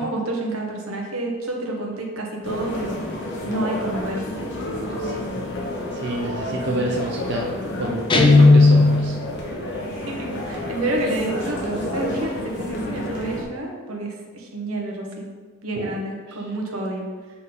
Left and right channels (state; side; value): normal; both; correlation 0.65